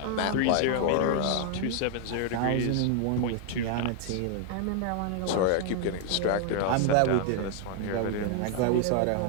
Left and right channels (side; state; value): both; different; correlation 0.00